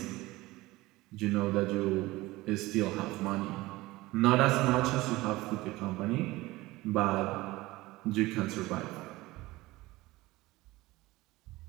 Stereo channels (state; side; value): quieter; left; 19.5 dB